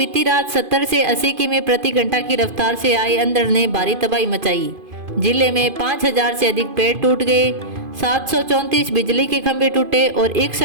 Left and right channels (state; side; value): late; left; 2.5 ms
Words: रात 70 से 80 किमी प्रति घंटा की रफ्तार से आई अंधड़ ने भारी तबाही मचाई। जिले में 5,000 से अधिक पेड़ टूट गए, 734 बिजली के खंभे टूटे और